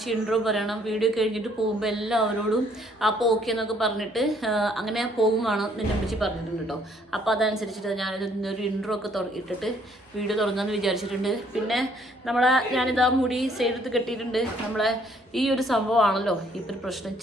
ഇൻട്രോ പറയണം. വീഡിയോ കഴിഞ്ഞിട്ട് പോകുമ്പോൾ എല്ലാവരോടും അപ്പോൾ ഓക്കെ എന്നൊക്കെ പറഞ്ഞിട്ട് അങ്ങനെ പോകുമാണ് എൻ്റെ അമ്മച്ചി പറഞ്ഞിട്ടുണ്ട് കേട്ടോ. അപ്പോൾ അതനുസരിച്ചിട്ട് ഞാനിതൊരു ഇൻട്രോ ഒക്കെ ഇട്ടിട്ട് വീഡിയോ തുടങ്ങാമെന്ന് വിചാരിച്ചിട്ടുണ്ട്. പിന്നെ ഞാനിതാ മുടി സൈഡെടുത്ത് കെട്ടിയിട്ടുണ്ട്. നമ്മളെ ഈ ഒരു സംഭവമാണല്ലോ ഇപ്പോൾ ഒരു പ്രശ്നം.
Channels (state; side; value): normal; both; correlation 0.64